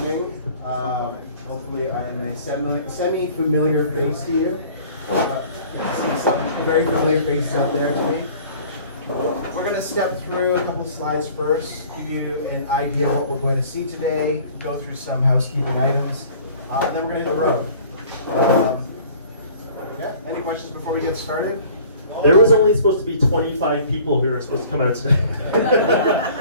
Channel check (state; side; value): inverted; both; correlation -0.49